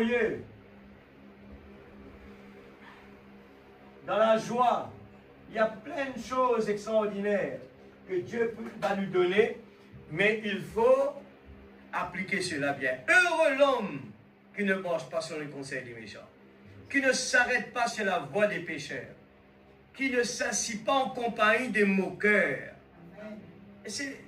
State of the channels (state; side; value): identical; both; correlation 1.00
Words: dans la joie. Il y a plein de choses extraordinaires que Dieu va nous donner, mais il faut appliquer cela bien. Heureux l'homme qui ne marche pas sur le conseil des méchants, qui ne s'arrête pas sur la voie des pécheurs, qui ne s'assit pas en compagnie des moqueurs.